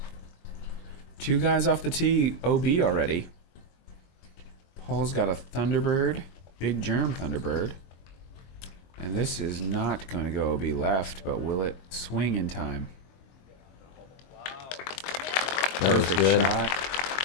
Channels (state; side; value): late; right; 23 ms